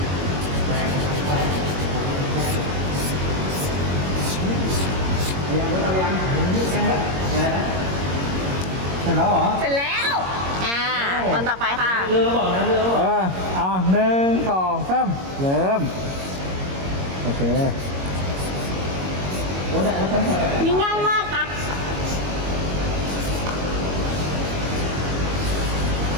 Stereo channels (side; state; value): left; late; 22 ms